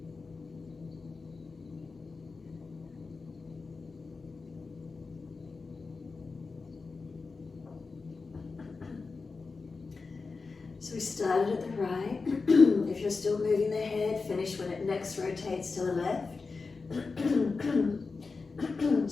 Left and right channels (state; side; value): quieter; right; 4.3 dB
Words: So we started at the right. If you're still moving the head, finish when it next rotates to the left.